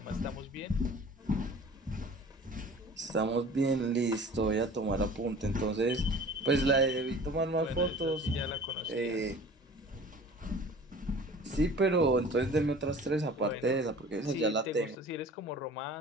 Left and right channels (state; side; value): normal; both; correlation 0.45